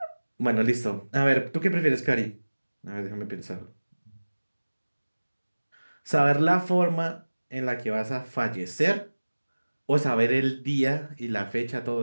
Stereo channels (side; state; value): both; inverted; correlation -1.00